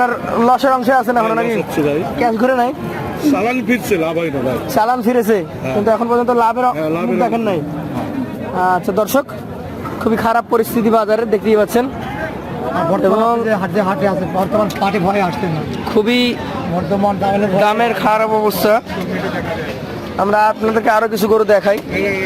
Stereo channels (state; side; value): identical; both; correlation 1.00